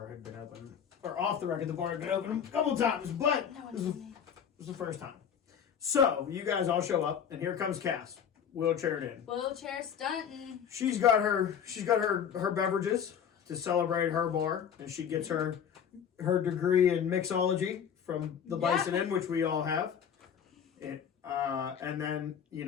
had been open. Or off the record, the bar had been open a couple times, but No one this told me. was the first time. So you guys all show up, and here comes Cass, wheelchaired in. Wheelchair stunting. She's got her beverages to celebrate her bar, and she gets her degree in mixology from the Bison Inn, which we all have. And then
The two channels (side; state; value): right; quieter; 8.1 dB